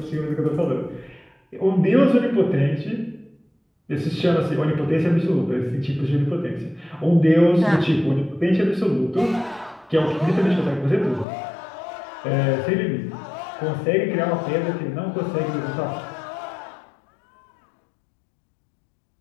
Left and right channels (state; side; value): drops out; right; at 11.2 s